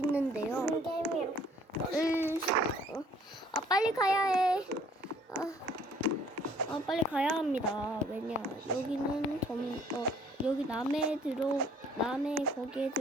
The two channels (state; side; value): normal; both; correlation 0.59